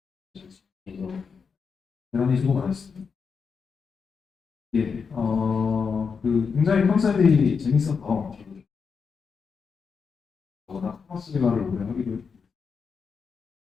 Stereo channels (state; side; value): quieter; right; 5.7 dB